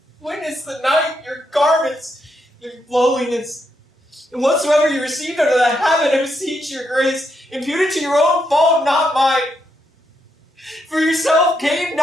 Witness the night, your garments, your lowliness, and whatsoever you received under the heaven, I beseech your grace, impute it to your own fault, not mine. For yourself came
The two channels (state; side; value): normal; both; correlation 0.80